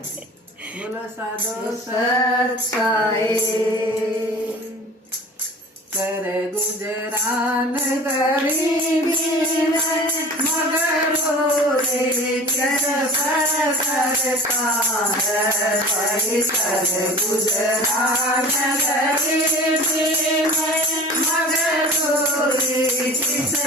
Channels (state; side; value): normal; both; correlation 0.41